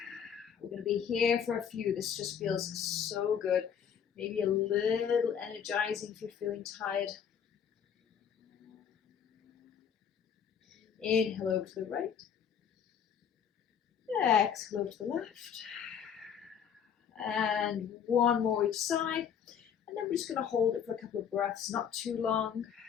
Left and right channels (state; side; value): quieter; right; 7.9 dB